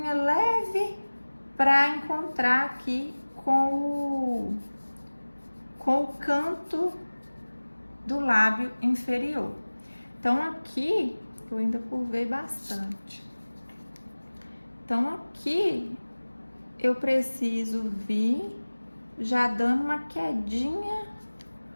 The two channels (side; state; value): both; inverted; correlation -1.00